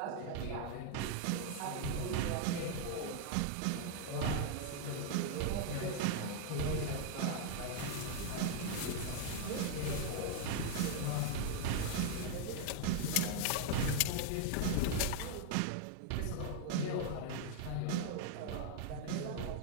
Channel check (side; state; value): both; different; correlation 0.00